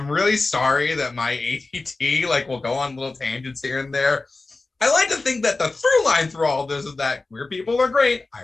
really sorry that my ADT like will go on little tangents here and there. I like to think that the through line through all this is that queer people are great. I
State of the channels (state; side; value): quieter; right; 3.5 dB